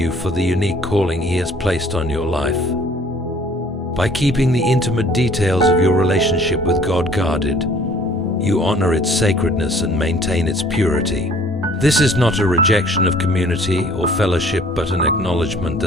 for the unique calling He has placed on your life. By keeping the intimate details of your relationship with God guarded, you honor its sacredness and maintain its purity. This is not a rejection of community or fellowship, but an acknowledgement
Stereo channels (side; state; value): both; normal; correlation 0.55